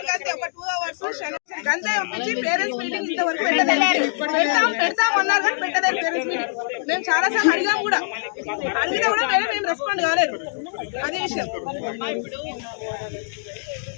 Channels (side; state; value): right; silent; digital silence